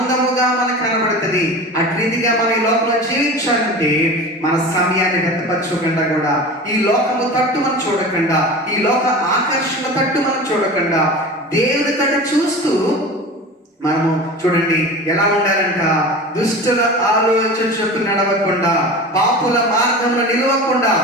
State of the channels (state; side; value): normal; both; correlation 0.33